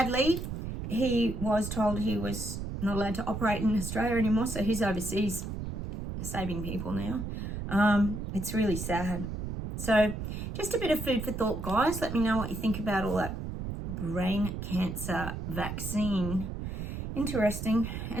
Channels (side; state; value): right; noise; rumble, 5 dB below the sound